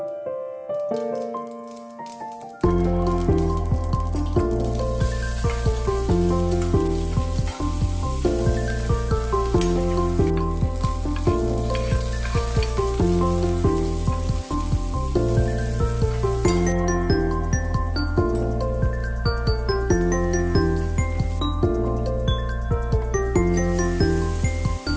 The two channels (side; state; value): both; identical; correlation 1.00